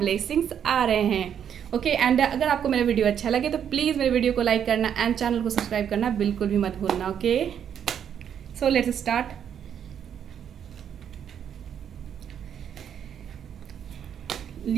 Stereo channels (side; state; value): left; quieter; 8.7 dB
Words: आ रहे हैं। ओके एंड अगर आपको मेरा वीडियो अच्छा लगे तो प्लीज़ मेरे वीडियो को लाइक करना एंड चैनल को सब्सक्राइब करना बिल्कुल भी मत भूलना। Okay, so let's start.